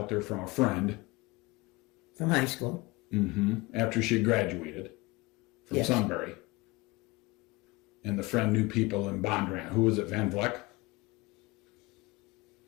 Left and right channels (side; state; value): right; quieter; 23.1 dB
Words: there from a friend from high school. After she graduated from Yes. Sunbury, and the friend knew people in Bondurant. Who was it? Van Vleck